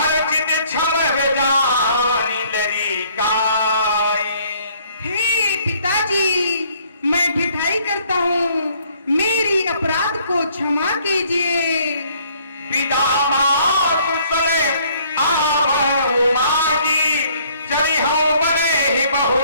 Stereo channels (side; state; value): both; inverted; correlation -0.61